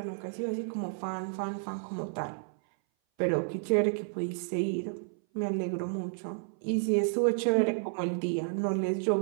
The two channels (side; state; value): left; silent; 57 dB below the other